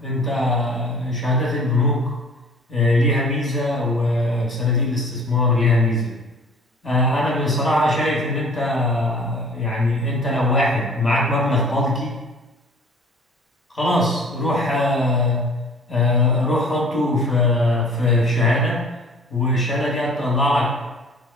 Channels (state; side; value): normal; both; correlation 0.49